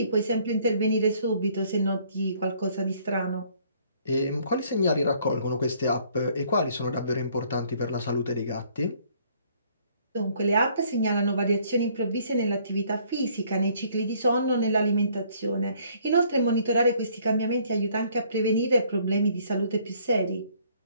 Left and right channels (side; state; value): both; inverted; correlation -0.62